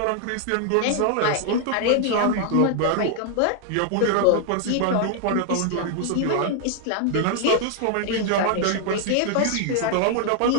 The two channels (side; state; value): both; different; correlation 0.00